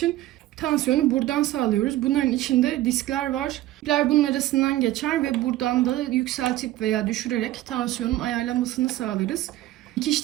tansiyonu buradan sağlıyoruz. Bunların içinde diskler var. İpler bunun arasından geçer ve buradan da yükseltip veya düşürerek tansiyonun ayarlanmasını sağlarız.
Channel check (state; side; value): quieter; left; 15.2 dB